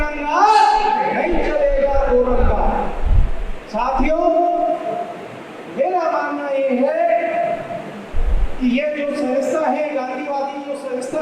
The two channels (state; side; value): identical; both; correlation 1.00